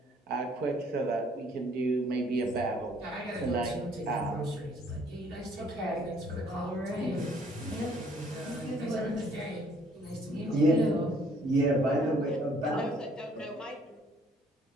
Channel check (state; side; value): normal; both; correlation 0.61